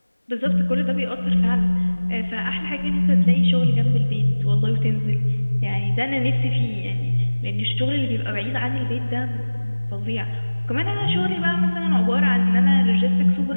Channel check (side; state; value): both; inverted; correlation -1.00